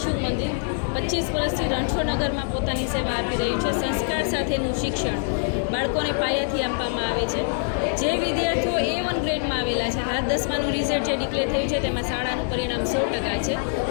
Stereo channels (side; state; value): right; silent; digital silence